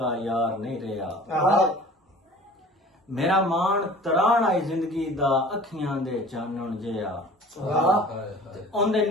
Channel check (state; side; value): normal; both; correlation 0.45